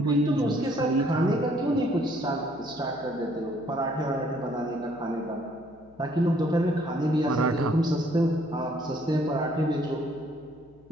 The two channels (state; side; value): noise; left; hum, 27 dB below the sound